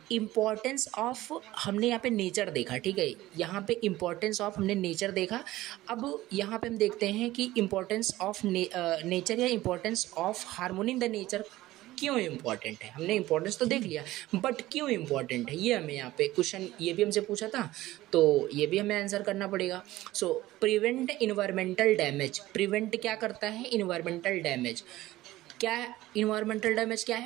इम्पॉर्टेंस ऑफ हमने यहाँ पे नेचर देखा। ठीक है, यहाँ पे इम्पॉर्टेंस ऑफ हमने नेचर देखा। अब यहाँ पे हम देखते हैं कि इम्पॉर्टेंस ऑफ नेचर या importance of harmony in the nature क्यों इम्पॉर्टेंट है। हमने इम्पोर्टेंस तो देख लिया, बट क्यों इम्पॉर्टेंट है ये हमें यहाँ पे क्वेश्चन, ये भी हमसे पूछा था, तो ये भी हमें आंसर करना पड़ेगा। सो प्रिवेंट इन्वायरमेंटल डैमेज, प्रिवेंट क्या करता है, इन्वायरमेंटल डैमेज। क्या है इन्वायरमेंटल डैमेज, क्या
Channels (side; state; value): left; quieter; 16.6 dB